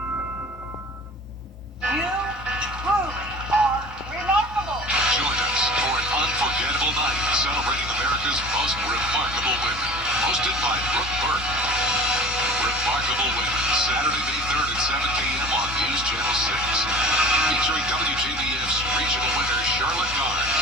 You truly are remarkable. Join us for an unforgettable night celebrating America's most remarkable women. Hosted by Brooke Burke. Remarkable Women, Saturday, May 3rd at 7 p.m. on News Channel 6. Featuring WJBF's regional winner, Charlotte Garnes.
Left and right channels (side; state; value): both; normal; correlation 0.41